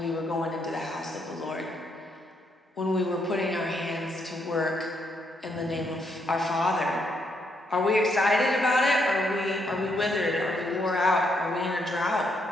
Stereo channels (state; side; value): normal; both; correlation 0.75